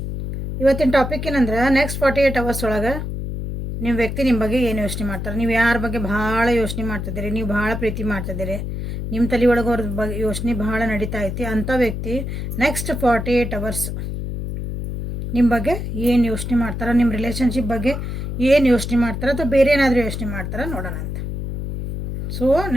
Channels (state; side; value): noise; left; hum, 5 dB below the sound